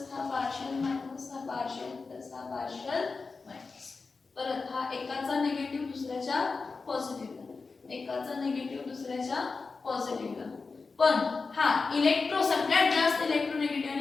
हा पार्शियल मायनस, हा पार्शियल प्लस, हा पार्शियल मायनस. परत हा एकाचा निगेटिव्ह दुसऱ्याच्या पॉझिटिव्हला, एकाचा निगेटिव्ह दुसऱ्याच्या पॉझिटिव्हला. पण हा इलेक्ट्रो सगळ्यात जास्त इलेक्ट्रोनेगेटिव्ह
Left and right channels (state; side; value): quieter; right; 4.3 dB